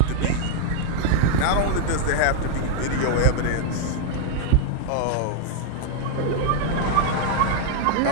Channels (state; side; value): different; both; correlation 0.00